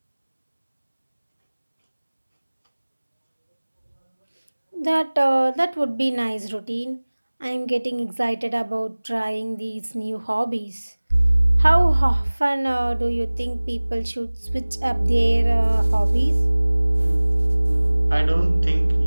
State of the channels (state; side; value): inverted; both; correlation -1.00